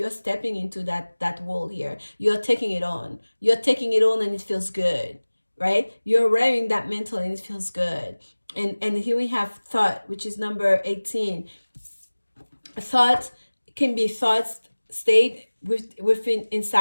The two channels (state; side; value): inverted; both; correlation -1.00